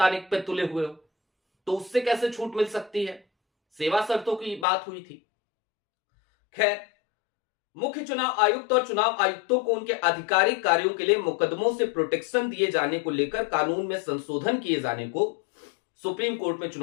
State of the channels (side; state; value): right; drops out; at 4.7 s